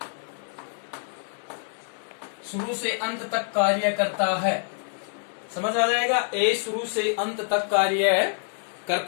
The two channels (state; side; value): silent; right; 61 dB below the other